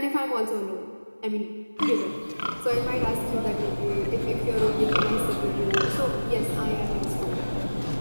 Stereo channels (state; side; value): inverted; both; correlation -1.00